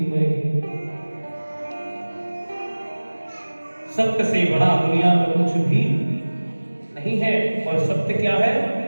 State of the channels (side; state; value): both; inverted; correlation -1.00